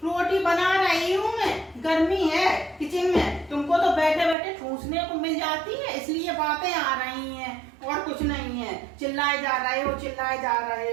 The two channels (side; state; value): left; drops out; at 4.4 s